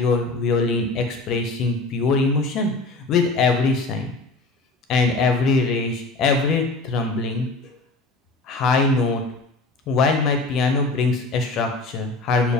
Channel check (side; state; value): right; quieter; 3.3 dB